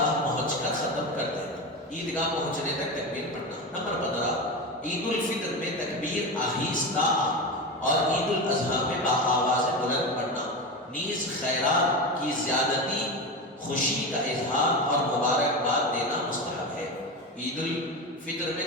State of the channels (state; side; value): normal; both; correlation 0.21